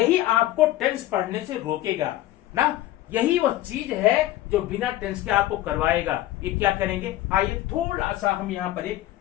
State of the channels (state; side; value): quieter; right; 15.1 dB